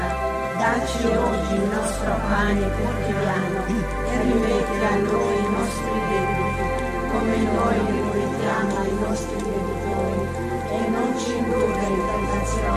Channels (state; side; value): identical; both; correlation 1.00